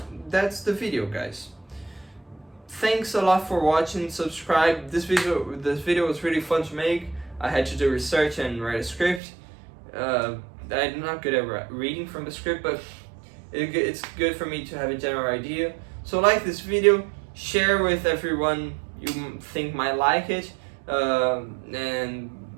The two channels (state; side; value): drops out; left; at 9.2 s